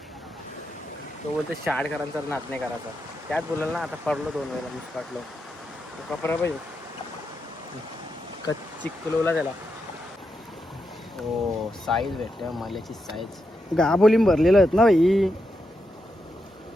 तो बोलतो शाळकरांचा नाच नाही करायचा. त्यात बोलाल ना आता पडलो 2 वेळेला मुसकाटलो. तो कपडा पाहिजे कच्ची कुलवला त्याला. हो साईज भेटल्या माल्याची साईज. गाबोलीम भरलेलं आहेत ना भाई.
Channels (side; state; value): both; normal; correlation 0.85